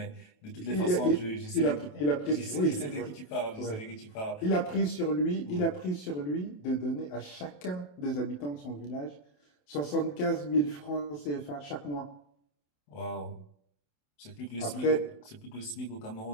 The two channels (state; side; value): late; right; 27 ms